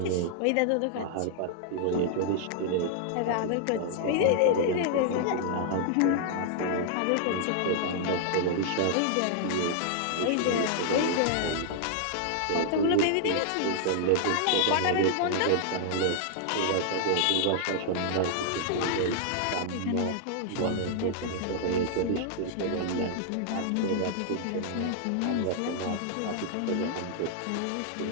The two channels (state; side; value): different; both; correlation -0.01